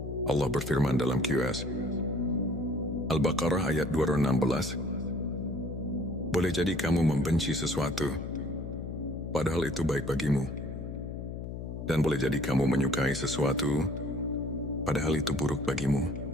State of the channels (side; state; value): left; noise; hum, 7 dB below the sound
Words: Allah berfirman dalam QS Al-Baqarah ayat 216. Boleh jadi kamu membenci sesuatu, padahal itu baik bagimu. Dan boleh jadi kamu menyukai sesuatu, padahal itu buruk bagimu.